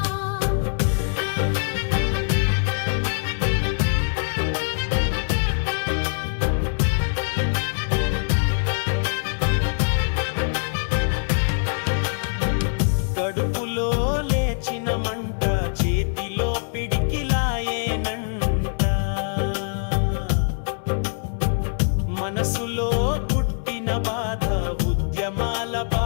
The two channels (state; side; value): silent; right; digital silence